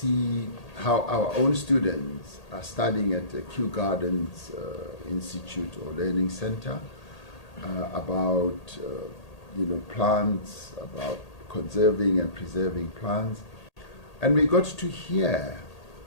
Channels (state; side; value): late; right; 1.8 ms